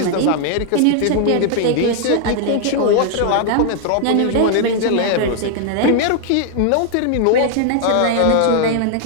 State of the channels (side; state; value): both; different; correlation 0.00